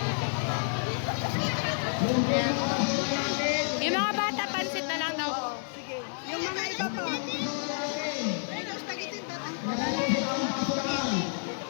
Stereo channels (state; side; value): silent; right; digital silence